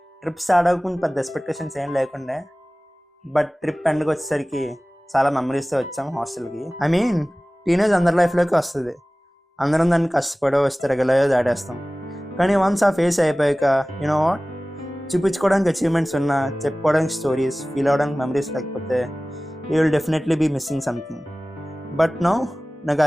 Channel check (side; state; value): both; normal; correlation 0.98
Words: ట్రిప్ స్టార్ట్ అవ్వకుండా పెద్ద ఎక్స్పెక్టేషన్స్ ఏం లేకుండే, బట్ ట్రిప్ ఎండ్కి వచ్చేసరికి చాలా మెమరీస్తో వచ్చాం హాస్టల్కి. ఐ మీన్ టీనేజ్ అందరి లైఫ్లోకి వస్తుంది. అందరం దాన్ని కష్టపడో వస్తే రెగ్యులర్గా దాటేస్తాం. కానీ వన్స్ ఆ ఫేస్ అయిపోయాక యూనో వాట్, చూపించుకోవడానికి అచీవ్మెంట్స్ ఉన్నా, చెప్పుకోవడానికి స్టోరీస్, ఫీల్ అవ్వడానికి మెమరీస్ లేకపోతే you will definitely be missing something. But no, నాకు